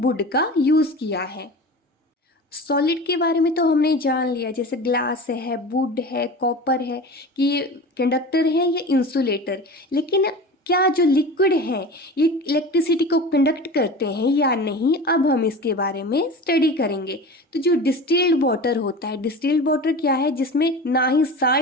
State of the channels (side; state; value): both; normal; correlation 0.34